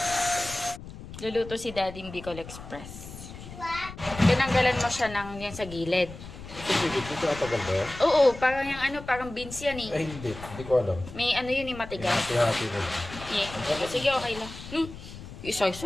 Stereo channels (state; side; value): noise; left; rumble, 13 dB below the sound